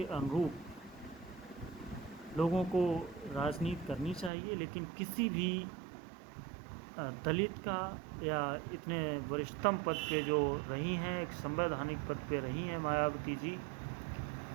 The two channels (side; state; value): left; drops out; at 4.3 s